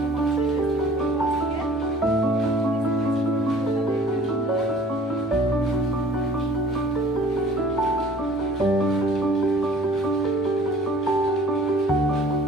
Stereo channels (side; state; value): both; normal; correlation 0.50